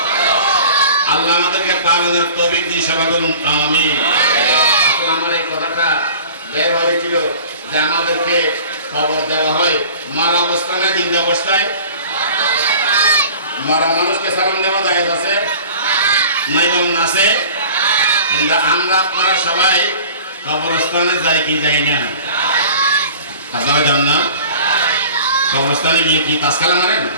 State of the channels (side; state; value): both; inverted; correlation -0.43